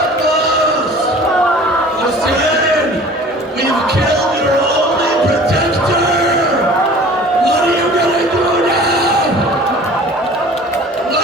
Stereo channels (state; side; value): normal; both; correlation 0.46